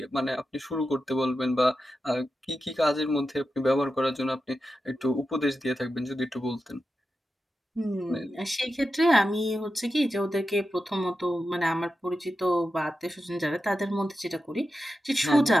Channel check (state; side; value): normal; both; correlation 0.91